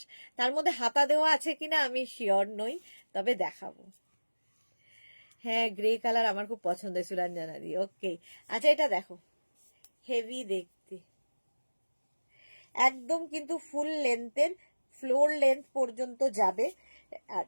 তার মধ্যে হাতা দেওয়া আছে কিনা আমি শিওর নই, তবে দেখাবো। হ্যাঁ, গ্রে কালার আমার খুব পছন্দের সুরঞ্জনা দি। ওকে, আচ্ছা এটা দেখো, হেভি দেখতে, একদম কিন্তু ফুল লেন্থের, ফ্লোর লেন্থ পর্যন্ত যাবে। আর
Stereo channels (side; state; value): both; inverted; correlation -1.00